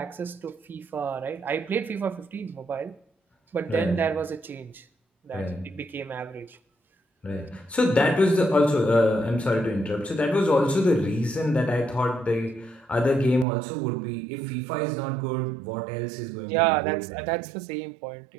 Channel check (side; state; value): left; drops out; at 13.5 s